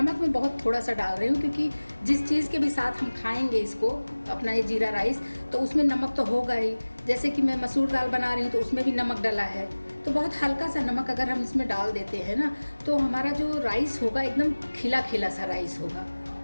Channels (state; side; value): inverted; both; correlation -1.00